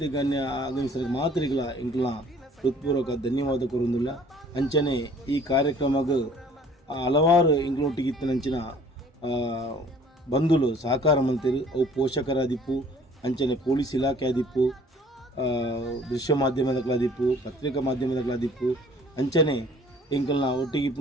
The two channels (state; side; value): normal; both; correlation 0.54